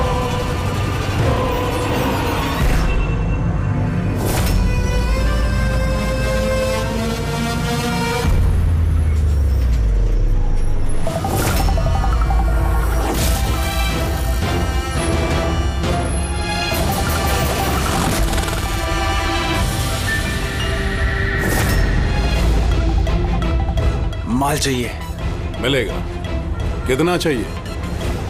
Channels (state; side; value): identical; both; correlation 1.00